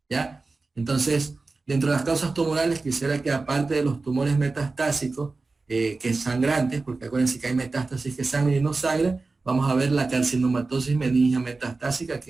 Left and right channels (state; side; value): quieter; left; 3.8 dB